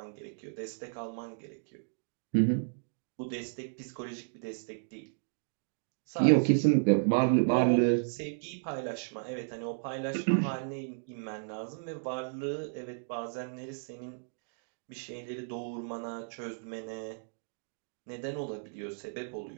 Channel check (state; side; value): silent; left; digital silence